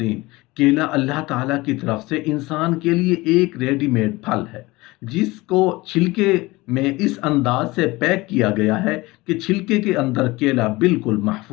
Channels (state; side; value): quieter; right; 21.2 dB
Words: केला अल्लाह ताला की तरफ से इंसान के लिए एक रेडीमेड फल है जिसको छिलके में इस अंदाज से पैक किया गया है कि छिलके के अंदर केला बिल्कुल